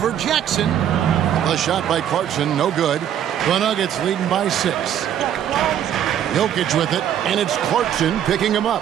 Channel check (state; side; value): quieter; left; 10.1 dB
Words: Jackson. The shot by Clarkson, no good. The Nuggets leading by 6. Jokic with it, and it's Clarkson picking him